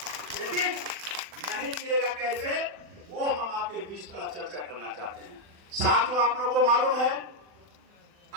लेकिन नहीं गिरेगा कैसे, वो हम आपके बीच थोड़ा चर्चा करना चाहते हैं। साथियों, आप लोगों को मालूम है,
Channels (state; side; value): late; left; 40 ms